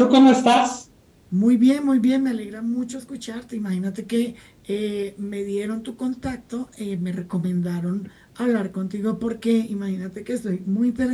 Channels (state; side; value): identical; both; correlation 1.00